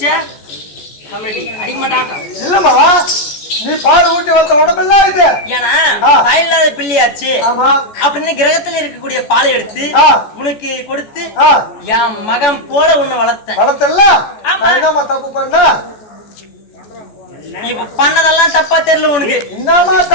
கமெடி அடிக்க மாட்டாங்க. இல்லம்மா நீ பால் ஊட்டி வந்த உடம்பெல்லாம் இது. ஏன்னா தாயில்லாத பிள்ளையாச்சு அப்படின்னு கிரகத்துல இருக்கக்கூடிய பாலை எடுத்து உனக்கு கொடுத்து என் மகன் போல உன்னை வளர்த்தல. தப்பு பண்ண நீ பண்ணதெல்லாம் தப்பா தெரியல உனக்கு. என்னமா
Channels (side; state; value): right; late; 14 ms